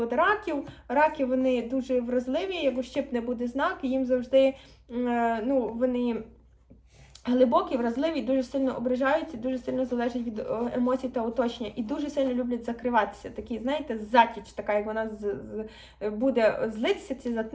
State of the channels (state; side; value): identical; both; correlation 1.00